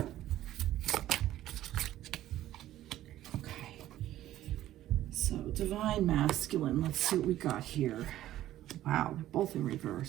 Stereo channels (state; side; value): quieter; left; 13.7 dB